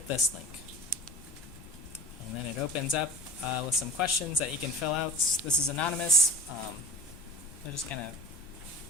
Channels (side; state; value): both; normal; correlation 0.37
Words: this link. And then it opens up with some questions that you can fill out. This is anonymous. I'll just kind of